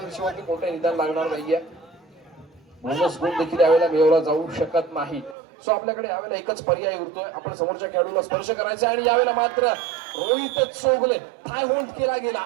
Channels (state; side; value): drops out; left; at 5.4 s